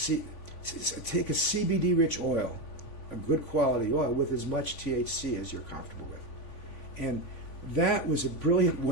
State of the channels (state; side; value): late; right; 3.5 ms